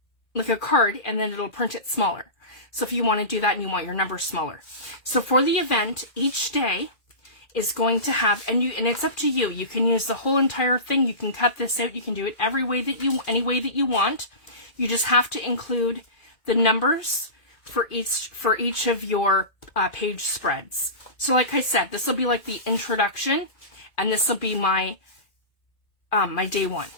a card, and then it'll print it smaller. So if you want to do that and you want your numbers smaller. So for the event, each day is going to have, and it's up to you. You can use the whole entire thing. You can cut this out. You can do it any way that you want. You just have to include the numbers for each of your page spreads. So like I said, this will be like the introduction, and this will be my my day 1,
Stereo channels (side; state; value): right; late; 2.4 ms